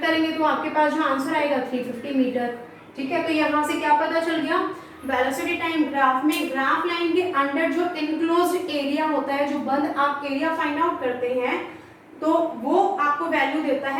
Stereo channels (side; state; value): both; identical; correlation 1.00